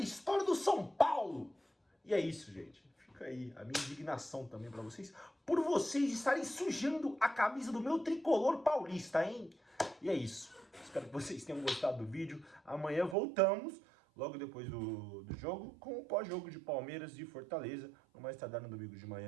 do São Paulo. E é isso, gente. Fica aí a minha indignação também pra vocês, por vocês estarem sujando a camisa do meu tricolor paulista, hein? E é isso. Espero que vocês tenham gostado do vídeo. Amanhã voltamos, logo depois do jogo, com o pós-jogo de Palmeiras e Fortaleza. No mais tardar no domingo de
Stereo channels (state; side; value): drops out; left; at 13.2 s